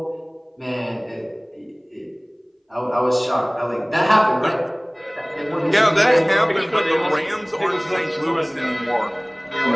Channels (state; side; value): identical; both; correlation 1.00